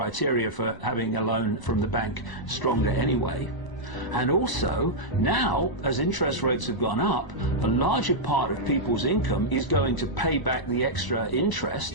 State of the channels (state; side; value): late; right; 1.0 ms